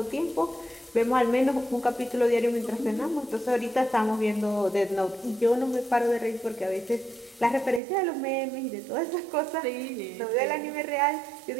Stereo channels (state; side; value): drops out; left; at 7.8 s